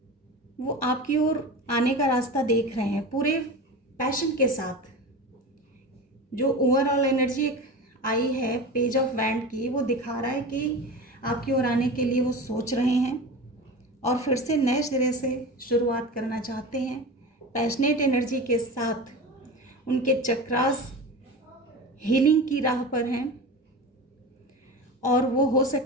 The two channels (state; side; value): normal; both; correlation 0.29